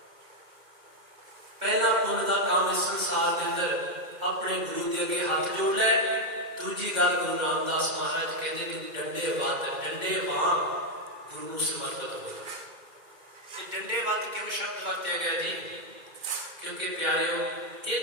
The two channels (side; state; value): left; late; 2.2 ms